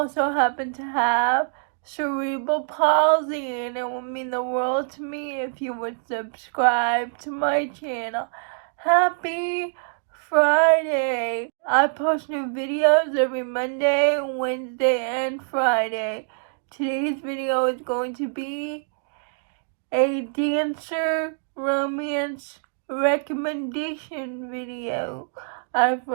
happen to have cerebral palsy, and it would mean the world to me if you would subscribe to my channel. Happy Friday! I post new videos every Monday, Wednesday, and Friday. Today's video is going to be a dancer romance recommendation video. I've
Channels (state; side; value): silent; left; digital silence